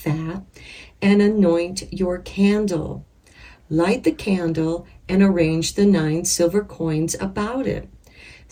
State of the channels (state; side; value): identical; both; correlation 1.00